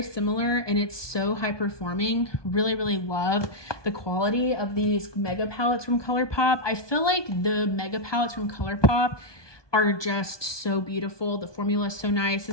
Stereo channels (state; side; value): late; right; 1.2 ms